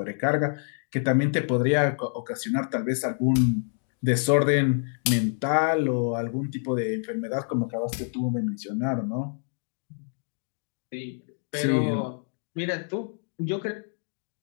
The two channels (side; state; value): right; silent; 56 dB below the other